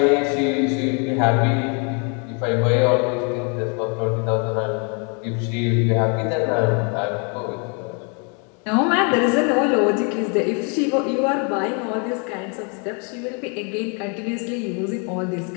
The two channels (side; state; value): right; quieter; 36.5 dB